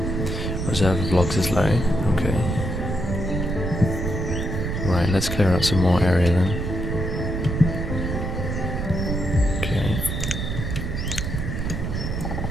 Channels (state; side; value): noise; right; rumble, 2 dB below the sound